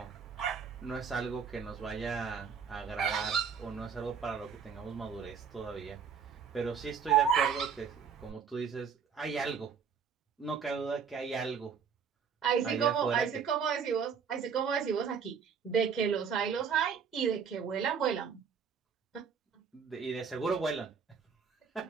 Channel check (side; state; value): left; quieter; 6.5 dB